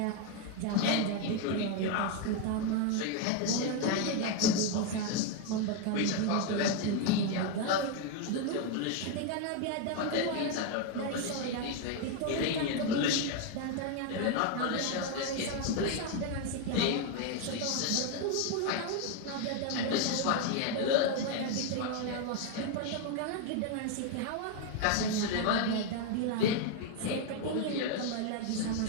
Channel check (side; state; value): both; different; correlation 0.01